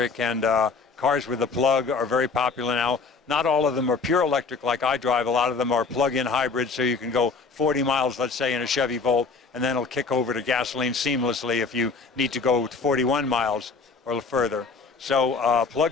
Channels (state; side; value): quieter; right; 4.6 dB